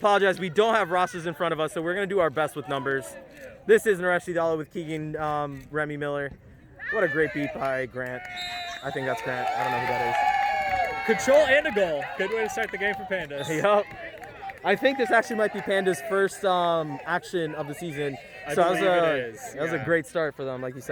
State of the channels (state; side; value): identical; both; correlation 1.00